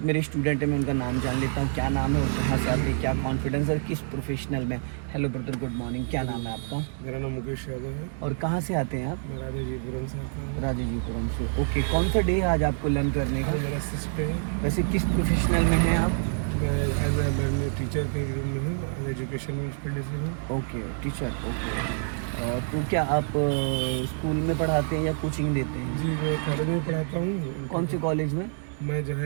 स्टूडेंट हैं, मैं उनका नाम जान लेता हूँ। क्या नाम है और कहाँ से आते हैं, क्या कॉन्फिडेंस है, किस प्रोफेशनल में। Hello brother, good morning. क्या नाम है आपका? मेरा नाम मुकेश यादव है और कहाँ से आते हैं आप? मैं राजाजीपुरम से आता हूँ। राजाजीपुरम से। ओके, कौन सा डे है आज आपको लर्न करने का? आज मेरा सिक्स डे है। वैसे किस प्रोफेशनल में हैं आप? मैं टीचर के रूम में हूँ, आज एजुकेशन म्यूनसिपलिटी से हूँ। Okay, teacher. ओके, और तो क्या आप स्कूल में पढ़ाते हैं या कोचिंग देते हैं? जी, मैं कॉलेज में पढ़ाता हूँ। कौन सी कॉलेज में? मैं जो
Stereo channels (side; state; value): left; silent; digital silence